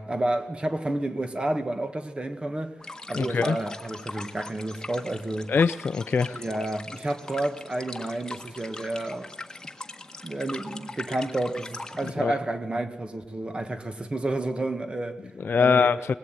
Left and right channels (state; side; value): normal; both; correlation 0.87